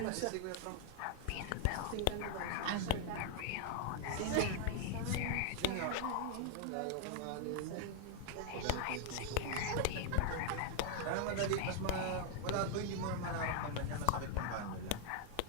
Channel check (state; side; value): different; both; correlation 0.00